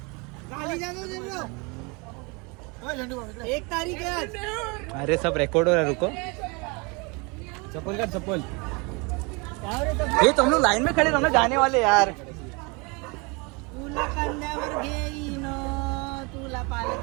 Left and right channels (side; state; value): left; quieter; 29.4 dB